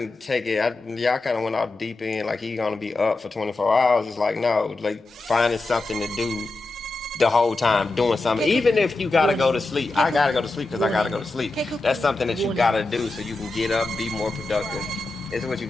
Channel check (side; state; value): right; quieter; 3.1 dB